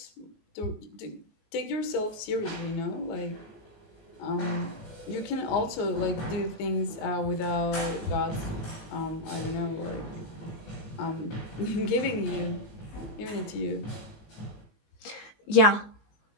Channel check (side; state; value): right; late; 19 ms